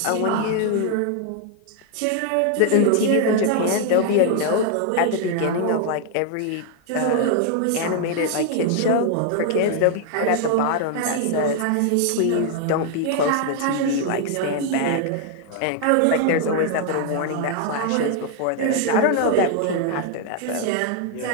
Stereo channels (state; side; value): different; both; correlation 0.00